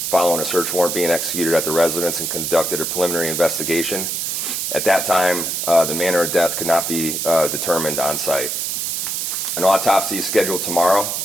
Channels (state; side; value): noise; right; hiss, 2 dB below the sound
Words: following a search warrant being executed at the residence and conducted a preliminary investigation. At that time, the manner of death could not be determined on site. An autopsy is scheduled tomorrow